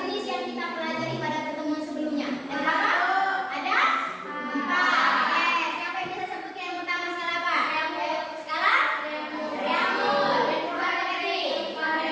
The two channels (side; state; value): both; identical; correlation 1.00